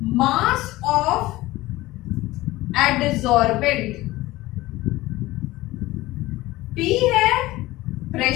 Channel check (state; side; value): quieter; right; 18.2 dB